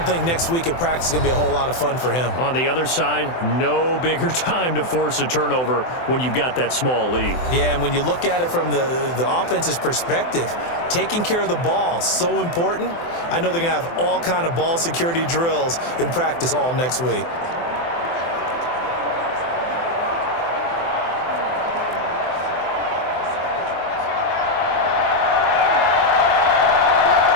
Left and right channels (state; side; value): late; right; 24 ms